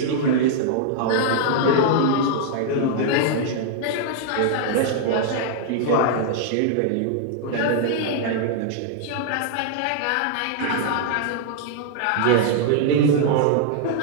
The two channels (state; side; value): different; both; correlation -0.01